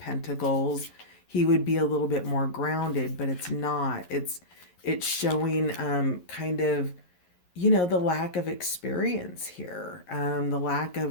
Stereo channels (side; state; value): right; late; 11 ms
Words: he would be a little bit more grounded, but it's not. It's showing kind of, the lack of experience here, the lack